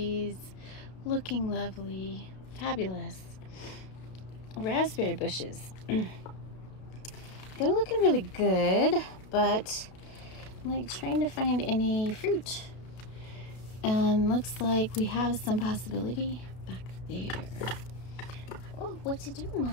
looking lovely, fabulous. Raspberry bushes, they're looking really good, but I'm like trying to find any fruit. Looks like we have some possibility back there. Oh, what you doing,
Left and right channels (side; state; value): right; late; 33 ms